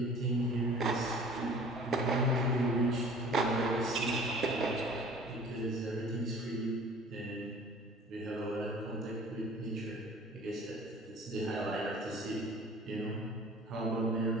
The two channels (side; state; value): both; normal; correlation 0.47